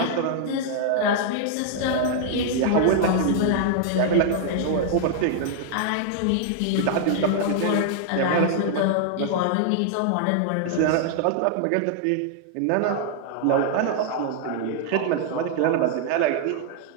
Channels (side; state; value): both; different; correlation -0.01